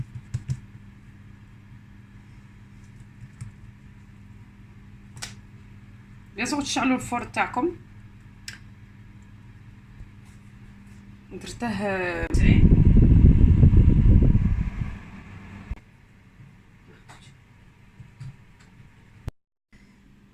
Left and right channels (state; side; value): identical; both; correlation 1.00